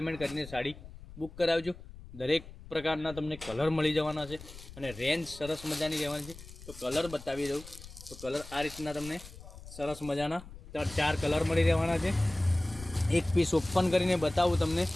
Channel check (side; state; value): left; noise; rumble, 16 dB below the sound